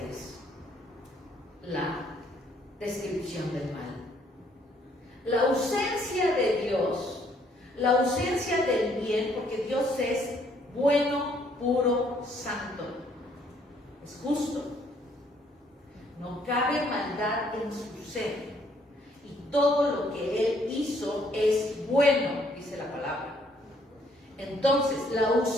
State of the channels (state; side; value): normal; both; correlation 0.66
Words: es la descripción del mal. La ausencia de Dios, la ausencia del bien, porque Dios es bueno, puro, santo, es justo. No cabe maldad en su ser. Y todo lo que Él hizo es bueno, dice la palabra. Entonces, la